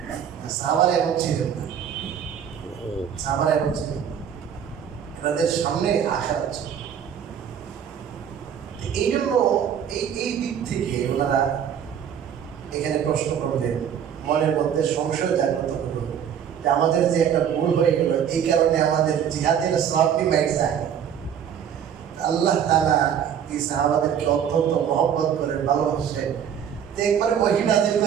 সাহাবারা এমন ছিলেন না, সাহাবারা এমন ছিলেন না, এনাদের সামনে আশা ছিল। এই জন্য এই দিক থেকে ওনারা এখানে প্রশ্ন করলেন, মনের মধ্যে সংশয় জাগ্রত হলো যে আমাদের যে একটা ভুল হয়ে গেল, এই কারণে আমাদের জিহাদের সওয়াবটি মাইক যায়। আল্লাহ তাআলা এই সাহাবাদেরকে অত্যন্ত মহব্বত করে ভালোবাসেন, তো একবারে ওহী নাযিল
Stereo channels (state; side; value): quieter; left; 8.7 dB